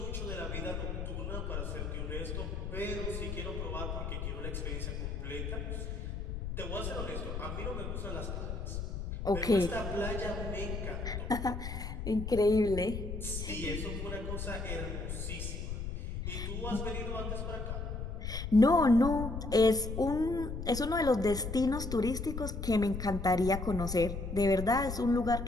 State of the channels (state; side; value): noise; left; rumble, 5 dB below the sound